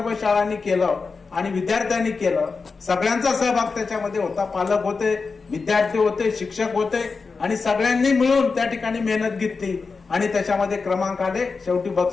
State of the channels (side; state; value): right; quieter; 4.6 dB